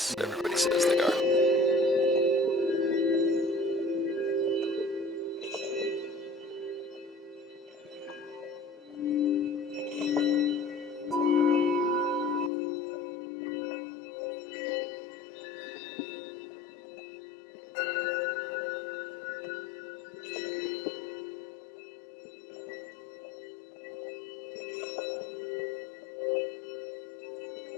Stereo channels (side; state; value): right; drops out; at 12.5 s